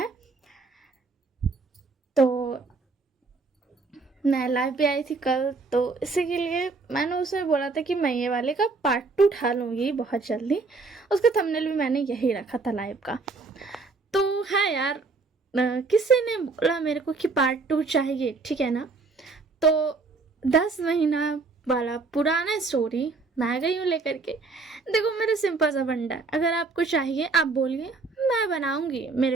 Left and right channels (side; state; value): left; quieter; 4.0 dB